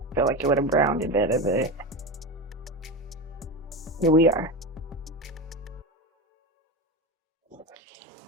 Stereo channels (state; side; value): normal; both; correlation 0.21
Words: Feel like it would have browned it better, but here we are.